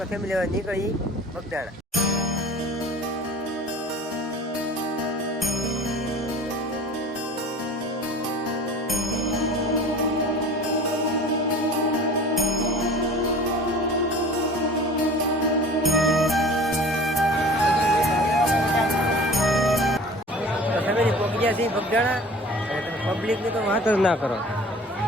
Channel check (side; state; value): both; normal; correlation 0.43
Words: ફેમિલી હવે નીકળી બગદાણા. તો ફેમિલી પહોંચી ગયા છીએ બગદાણા. અને તમે પબ્લિકની તો વાત જ ના કરો.